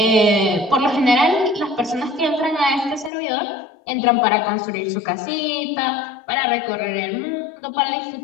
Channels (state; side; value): drops out; right; at 3.1 s